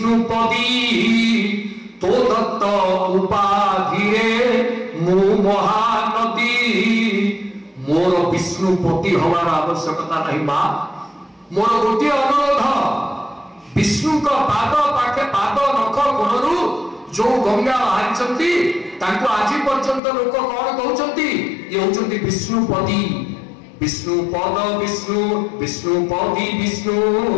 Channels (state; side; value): drops out; right; at 20.0 s